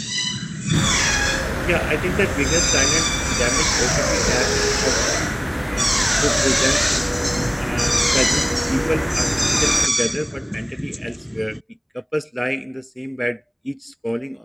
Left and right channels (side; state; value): both; identical; correlation 1.00